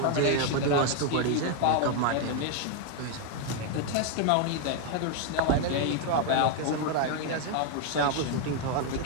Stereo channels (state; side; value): different; both; correlation 0.01